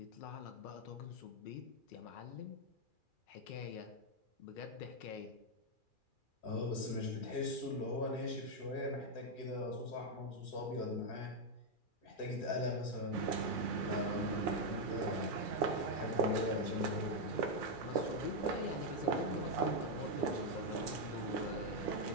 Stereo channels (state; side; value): late; right; 2.4 ms